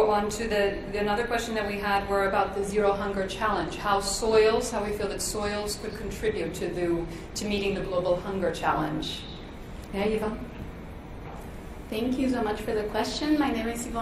on to another question that we had were about the Zero Hunger Challenge. How we feel that soils could contribute to meeting the global hunger challenge. Yeah, Eva? Thank you so much for the question. My name is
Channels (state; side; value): identical; both; correlation 1.00